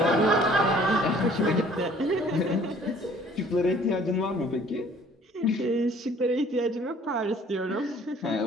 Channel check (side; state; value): both; normal; correlation 0.55